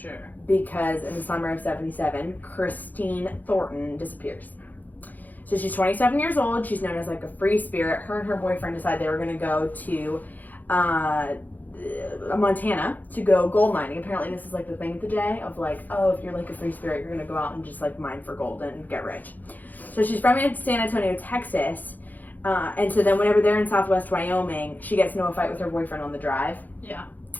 Because in the summer of 77, Christine Thornton disappears. So she's 27 years old. She's known as like a free spirit. Her and her boyfriend decided they were going to go to Montana to go gold mining. Apparently this is like the thing of the day of like, oh, if you're like a free spirit, you're going to go out and just like mine for gold and get rich. So she's from San Antonio, Texas. And so then whenever they're in Southwest Wyoming, she gets into a fight with her boyfriend on the drive. Yeah.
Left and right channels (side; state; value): right; late; 0.083 ms